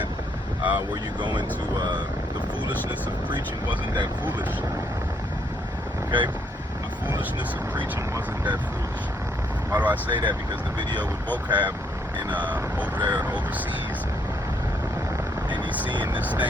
where you go into the foolishness of preaching wasn't that foolish. Okay? The foolishness of preaching wasn't that foolish. Why do I say that? Because the video with vocab in over there overseas, and he's seeing this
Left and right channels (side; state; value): both; normal; correlation 0.71